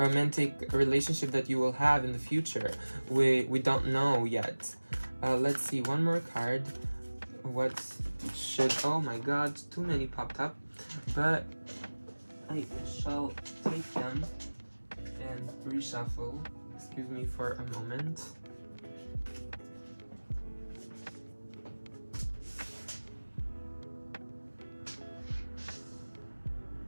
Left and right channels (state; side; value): inverted; both; correlation -1.00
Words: relationship that you will have in the future. We don't know yet. Let's see, one more card. What should, oh my god, too many popped up, but I shall take them and reshuffle. Excuse me for a moment.